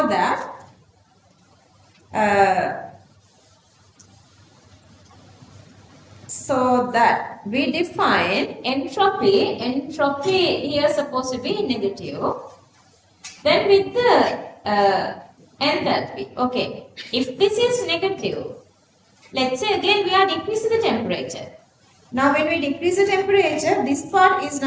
that we define entropy here is supposed to be negative. Then with the enthalpy, okay, if this is negative, let's say again we are decreasing the temperature. Now when we decrease the temperature, this part is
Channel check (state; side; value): identical; both; correlation 1.00